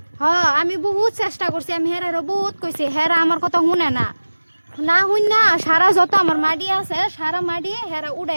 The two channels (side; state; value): both; inverted; correlation -1.00